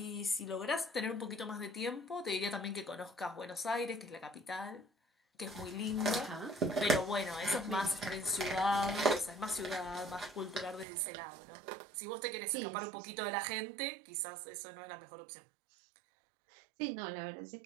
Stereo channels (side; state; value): left; drops out; at 10.9 s